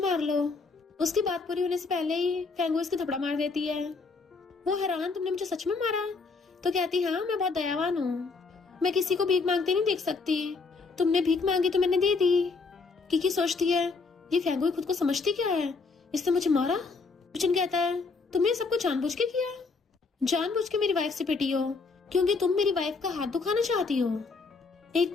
लो। उसकी बात पूरी होने से पहले ही फेंगू इसकी थप्पड़ मार देती है। वो हैरान, तुमने मुझे सच में मारा? तो कहती, हाँ मैं बहुत दयावान हूँ, मैं किसी को भीख मांगते नहीं देख सकती। तुमने भीख मांगी तो मैंने दे दी। किकी सोचती है, ये फेंगू खुद को समझती क्या है, इसने मुझे मारा। युचन कहता है, तुमने सबको जानबूझ के किया? जानबूझ के मेरी वाइफ से पिटी हो क्योंकि तुम मेरी वाइफ का हाथ दुखाना चाहती हो। एक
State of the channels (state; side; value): quieter; right; 4.3 dB